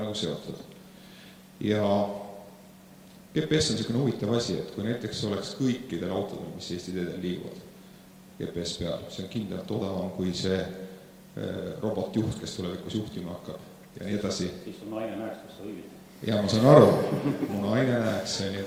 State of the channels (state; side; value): identical; both; correlation 1.00